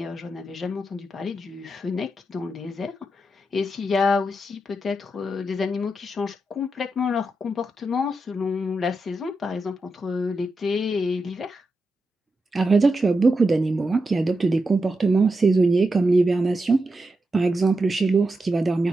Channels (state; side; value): normal; both; correlation 0.87